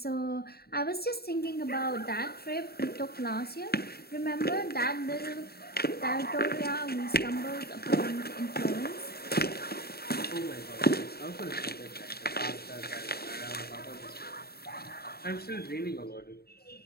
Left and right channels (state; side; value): late; right; 0.46 ms